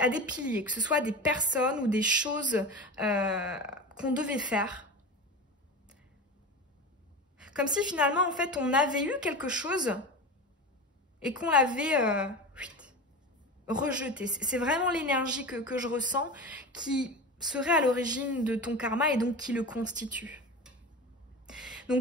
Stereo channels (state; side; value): normal; both; correlation 0.28